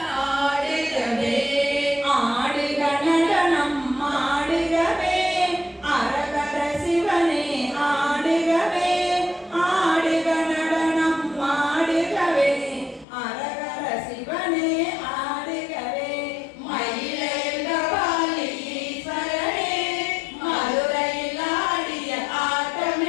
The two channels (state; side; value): drops out; right; at 13.1 s